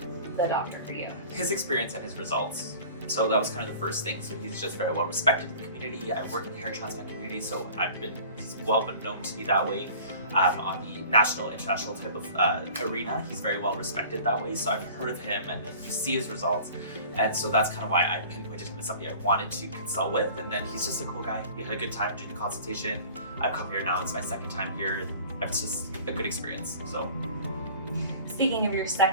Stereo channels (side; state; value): both; inverted; correlation -0.44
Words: the doctor for you? His experience and his results. So that was kind of the first thing. So he's just very well respected in the community. I work in the hair transplant community, so he's well been known to me that way. On the national, international type of arena, he's very well respected that way. So I've heard of him and then you see his results. And so that's kind of why I pinpointed him as somebody I wanted to consult with. And then he's just a cool guy. We had a good time doing the consultation. I've come here now, it's my second time here. It's just a good experience, so. Speaking of your